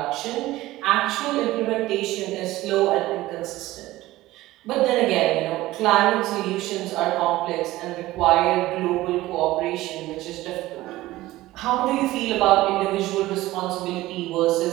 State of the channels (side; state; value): left; quieter; 17.1 dB